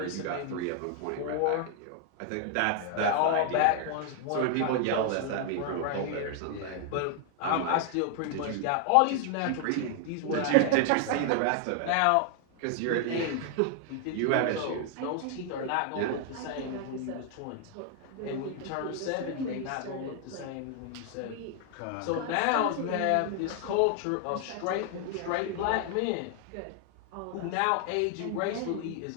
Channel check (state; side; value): different; both; correlation 0.00